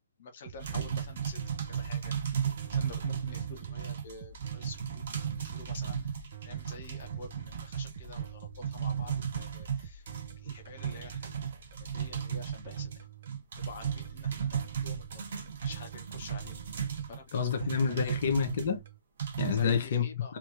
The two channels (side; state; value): both; inverted; correlation -0.59